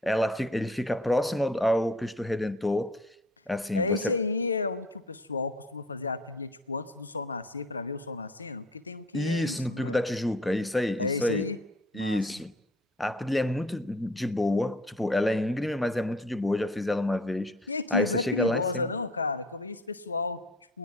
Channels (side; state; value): both; normal; correlation 0.50